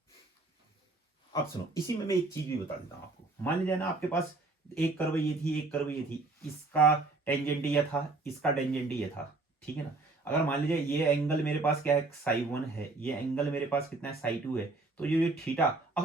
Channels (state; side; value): quieter; left; 3.4 dB